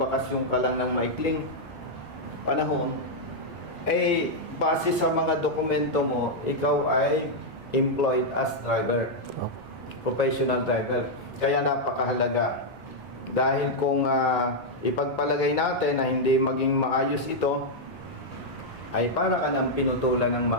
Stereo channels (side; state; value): both; normal; correlation -0.03